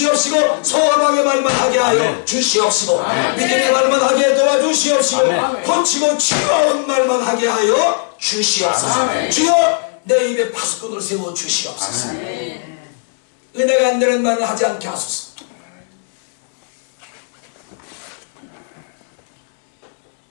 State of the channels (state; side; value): silent; right; digital silence